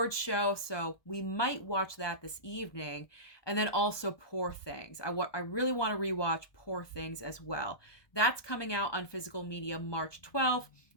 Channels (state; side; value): late; right; 1.2 ms